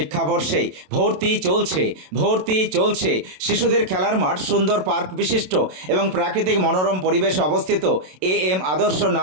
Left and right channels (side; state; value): left; late; 27 ms